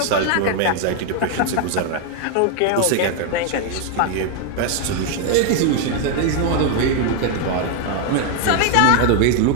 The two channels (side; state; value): both; different; correlation 0.00